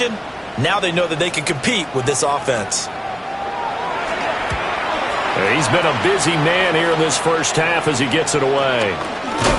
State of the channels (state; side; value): identical; both; correlation 1.00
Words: now they know that they can compete with this offense. He's been a busy man here in this first half as he gets it away.